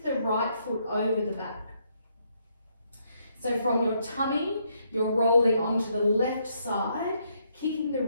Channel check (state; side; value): inverted; both; correlation -0.74